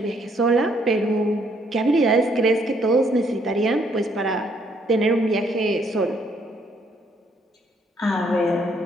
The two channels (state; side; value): normal; both; correlation 0.69